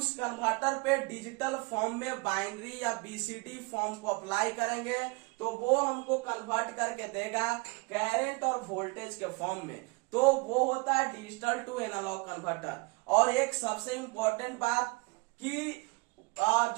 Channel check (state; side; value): quieter; left; 28.1 dB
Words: कन्वर्टर पे डिजिटल फॉर्म में बाइनरी या बीसीडी फॉर्म को अप्लाई करेंगे तो वो हमको कन्वर्ट करके देगा करंट और वोल्टेज के फॉर्म में। तो वो होता है डिजिटल टू एनालॉग कन्वर्टर। और एक सबसे इंपॉर्टेंट बात कि